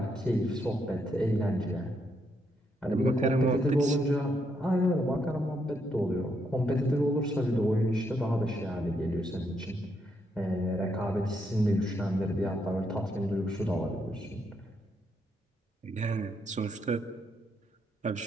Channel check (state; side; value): normal; both; correlation 0.77